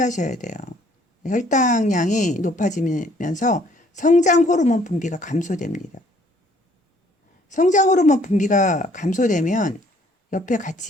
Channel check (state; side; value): normal; both; correlation 0.61